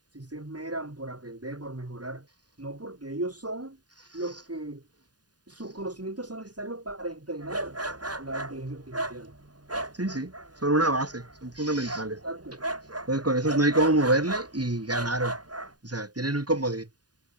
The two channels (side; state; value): left; late; 0.69 ms